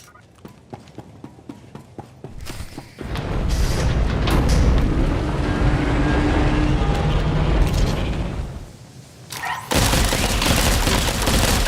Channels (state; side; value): identical; both; correlation 1.00